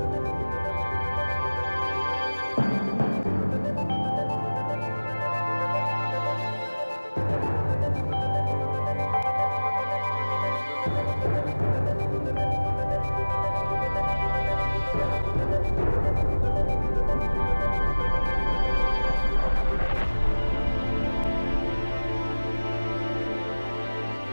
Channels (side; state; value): both; inverted; correlation -1.00